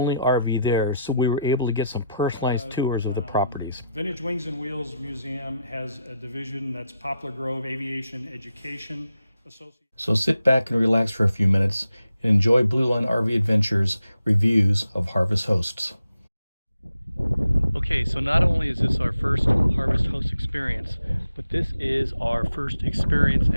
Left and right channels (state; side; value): inverted; both; correlation -0.83